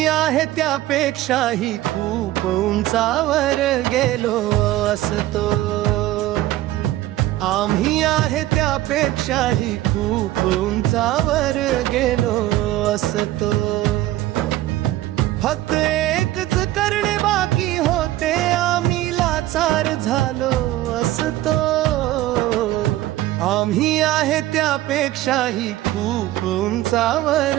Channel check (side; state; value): left; quieter; 15.5 dB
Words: आहे त्यापेक्षाही खूप उंचावर गेलो असतो। आम्ही आहे त्यापेक्षाही खूप उंचावर गेलो असतो। फक्त एकच करणे बाकी होते, आम्ही लाचार झालो असतो। आम्ही आहे त्यापेक्षाही खूप उंचावर